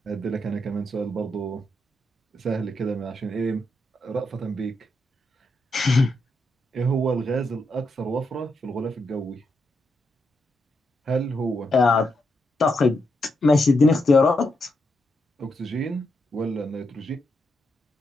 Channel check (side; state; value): both; normal; correlation 0.82